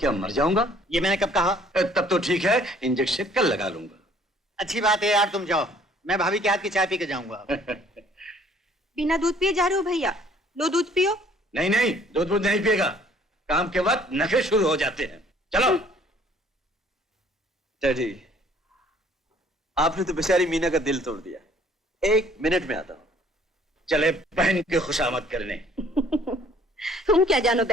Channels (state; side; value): normal; both; correlation 0.58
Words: मर जाऊंगा? ये मैंने कब कहा? तब तो ठीक है, इंजेक्शन कल लगा लूंगा। अच्छी बात है यार, तुम जाओ, मैं भाभी के हाथ की चाय पी के जाऊंगा। बिना दूध पिए जा रहे हो भैया? लो दूध पियो। नहीं नहीं, दूध नहीं पिएगा। काम के वक्त नखरे शुरू हो जाते हैं। चलो। डैडी, आपने तो बेचारी मीना का दिल तोड़ दिया। 1 मिनट में आता हूं। चले बहन की खुशामद करने। तुम क्या जानो